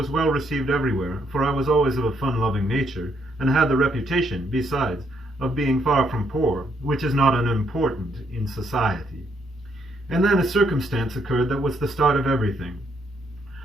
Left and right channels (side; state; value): both; normal; correlation 0.73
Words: well received everywhere, for I was always of a fun-loving nature, and had the reputation, besides, of being far from poor, which is not unimportant in society. And then a circumstance occurred that was the start of everything.